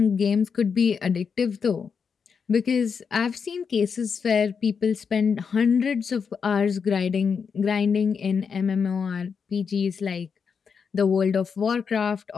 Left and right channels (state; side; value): quieter; right; 6.1 dB